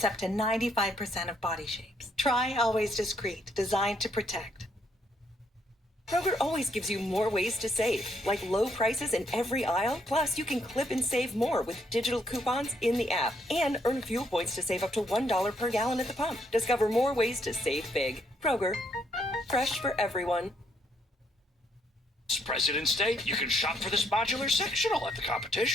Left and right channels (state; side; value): normal; both; correlation 0.72